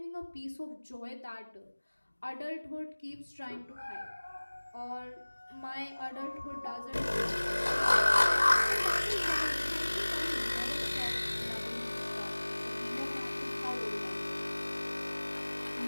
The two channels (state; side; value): inverted; both; correlation -1.00